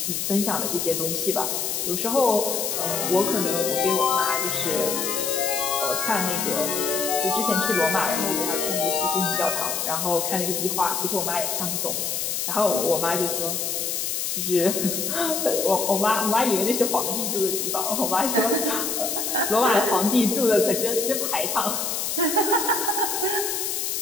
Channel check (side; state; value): left; noise; hiss, 1 dB below the sound